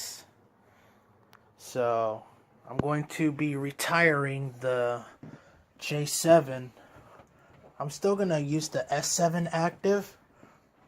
So I'm going to be retiring the J7. I'm still going to use the S7 active,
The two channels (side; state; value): both; identical; correlation 1.00